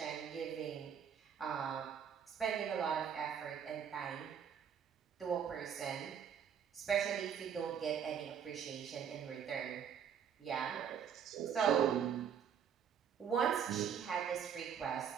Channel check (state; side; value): quieter; left; 8.0 dB